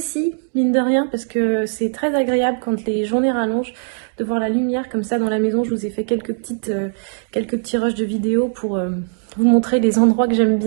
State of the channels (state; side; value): silent; left; digital silence